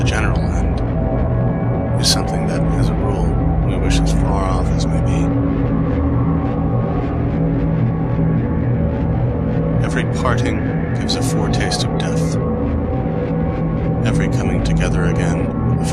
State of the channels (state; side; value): identical; both; correlation 1.00